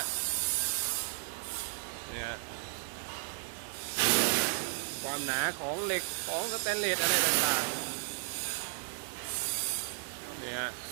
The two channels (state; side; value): silent; left; digital silence